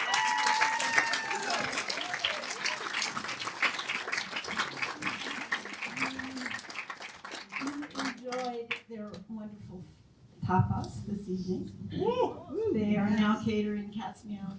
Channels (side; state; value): both; identical; correlation 1.00